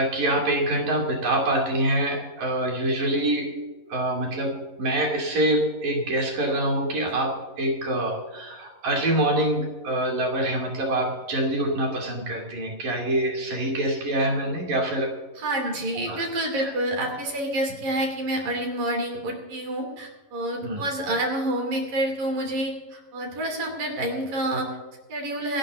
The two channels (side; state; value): left; late; 11 ms